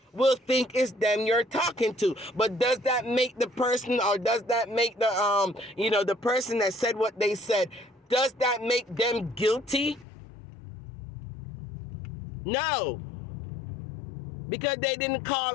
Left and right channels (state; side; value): drops out; right; at 10.1 s